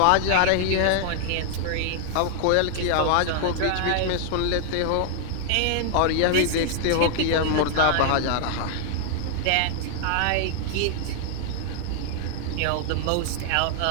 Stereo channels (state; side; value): different; both; correlation 0.00